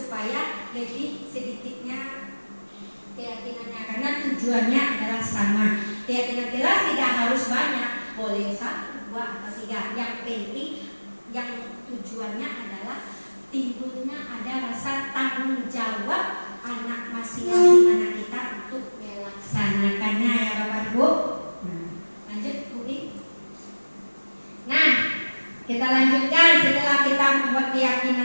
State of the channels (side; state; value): both; inverted; correlation -1.00